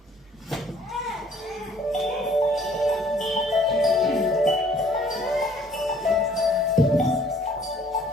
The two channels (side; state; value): both; normal; correlation 0.58